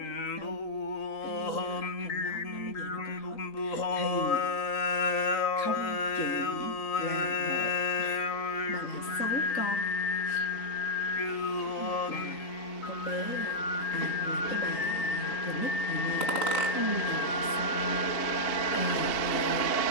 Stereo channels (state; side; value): late; right; 2.8 ms